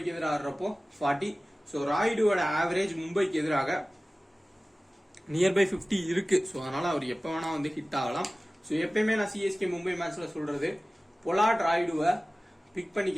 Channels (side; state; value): both; normal; correlation 0.97